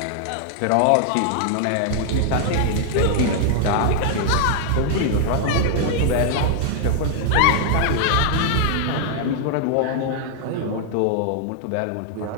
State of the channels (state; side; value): different; both; correlation -0.01